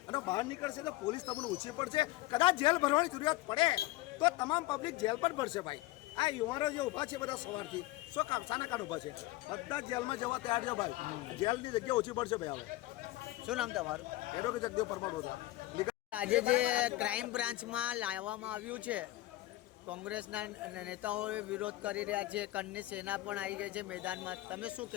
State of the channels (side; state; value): right; quieter; 17.7 dB